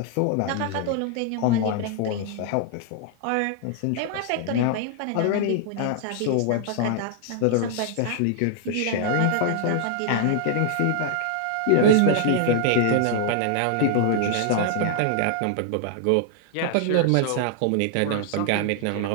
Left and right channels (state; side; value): different; both; correlation 0.00